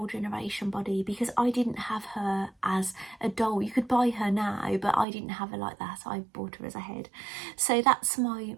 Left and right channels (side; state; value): left; drops out; at 5.1 s